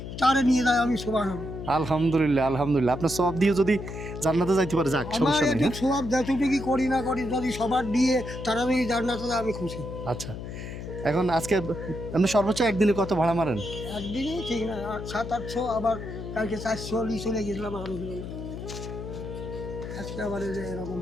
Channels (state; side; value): noise; left; hum, 9 dB below the sound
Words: তারে নিয়ে যায়, আমি সুবহানাল্লাহ। আলহামদুলিল্লাহ, আলহামদুলিল্লাহ। আপনার সব দিয়ে যদি জান্নাতে যাইতে পারে, যাক, আমার সমস্যা নেই। একটু সব যতটুকু করি না করি, যদি সবার দিয়ে তারা যদি জান্নাতে যায়, আমি খুশি। আচ্ছা, এখন আজকে আপনি সর্বোচ্চ একদিনে কত ভাড়া মারেন? একদিনই ঠিক না, 700-800, আবার কালকে 400 চলে গেছিলাম, আরো দিল না। আজকে আবার এই যে এরকম